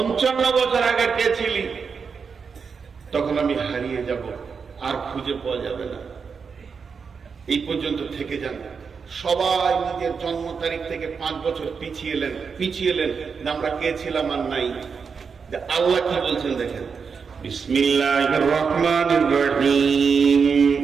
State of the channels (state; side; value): quieter; left; 5.7 dB